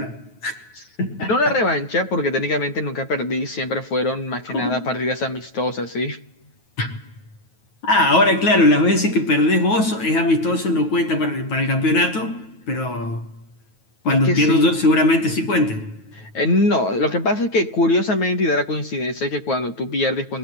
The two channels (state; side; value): late; right; 9.3 ms